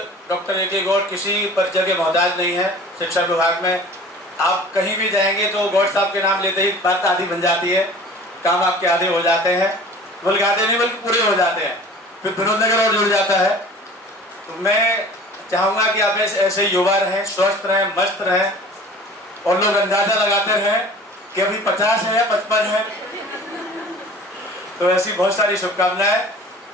डॉक्टर ए.के. गौड़ किसी परिचय के मोहताज नहीं है। शिक्षा विभाग में आप कहीं भी जाएंगे तो गौड़ साहब के नाम लेते ही बात आधी बन जाती है, काम आपके आधे हो जाते हैं, बल्कि आधे नहीं बल्कि पूरे हो जाते हैं, फिर विनोद नगर और जुड़ जाता है। तो मैं चाहूँगा कि आप ऐसे युवा रहें, स्वस्थ रहें, मस्त रहें और लोग अंदाजा लगाते रहें कि अभी 50 है या 55 है। तो ऐसी बहुत सारी शुभकामनाएं।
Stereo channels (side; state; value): both; normal; correlation 0.43